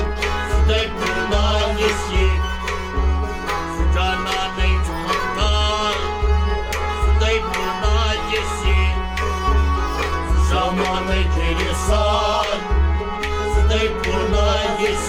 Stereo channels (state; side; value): identical; both; correlation 1.00